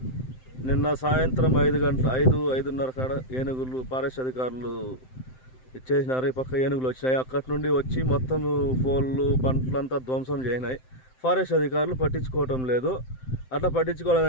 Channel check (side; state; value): right; late; 7.8 ms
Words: నిన్న సాయంత్రం 5:30 కాడ ఏనుగులు ఫారెస్ట్ అధికారులు ఇచ్చేసినారు. ఈ పక్క ఏనుగులు వచ్చినాయి. అక్కడి నుండి వచ్చి మొత్తం పోళ్ళు పంటలంతా ధ్వంసం చేసినాయి. ఫారెస్ట్ అధికారులు పట్టించుకోవటం లేదు. అట్లా